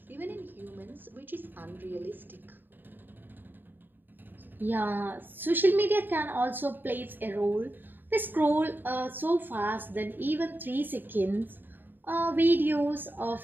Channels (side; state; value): left; late; 0.093 ms